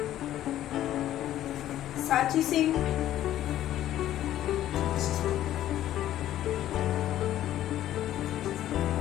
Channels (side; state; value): right; quieter; 12.7 dB